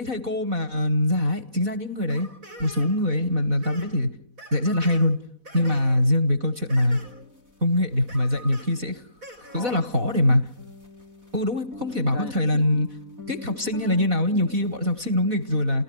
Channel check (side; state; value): left; late; 4.1 ms